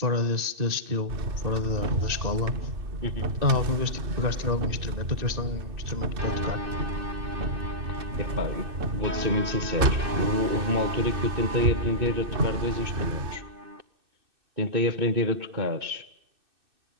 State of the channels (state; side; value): late; left; 2.6 ms